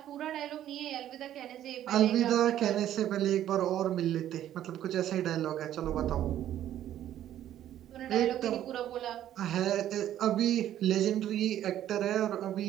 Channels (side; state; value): left; quieter; 11.8 dB